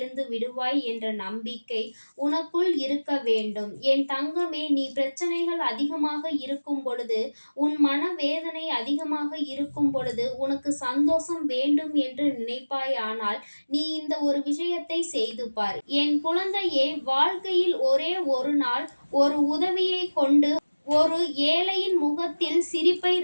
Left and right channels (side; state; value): both; inverted; correlation -1.00